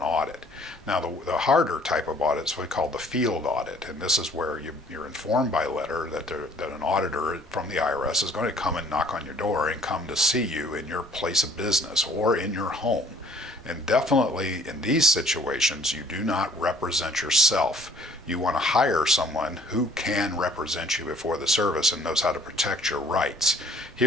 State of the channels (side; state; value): both; normal; correlation 0.57